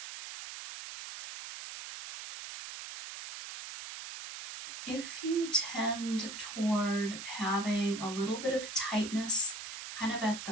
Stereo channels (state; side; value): noise; right; hiss, 9 dB below the sound